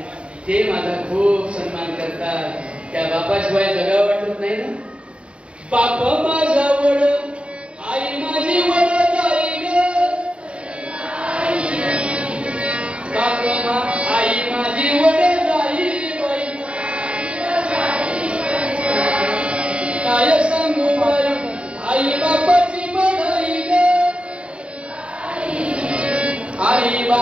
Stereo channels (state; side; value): late; left; 0.059 ms